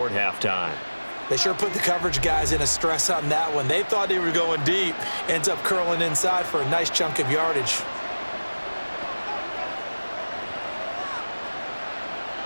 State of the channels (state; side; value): inverted; both; correlation -1.00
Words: halftime. They sure put the coverage guys in a stress on that one. They thought they were going deep. Ends up curling inside for a nice chunk of yardage.